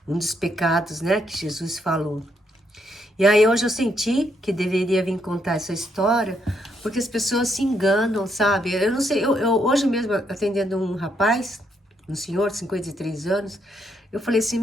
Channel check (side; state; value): both; normal; correlation 0.75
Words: Um dos pecados, né, que Jesus falou. E aí hoje eu senti que deveria vir contar essa história, porque as pessoas se enganam, sabe? Eu não sei, eu hoje mesmo atendendo um rapaz, um senhor de 53 anos, eu falei assim,